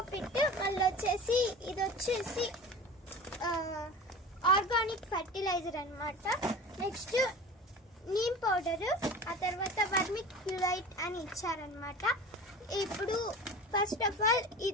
పిట్, మళ్ళీ వచ్చేసి ఇది వచ్చేసి ఆర్గానిక్ ఫర్టిలైజర్ అనమాట. నెక్స్ట్ నీమ్ పౌడర్, ఆ తర్వాత వర్మిక్యులైట్ అని ఇచ్చారనమాట. ఇప్పుడు ఫస్ట్ ఆఫ్ ఆల్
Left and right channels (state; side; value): normal; both; correlation 0.36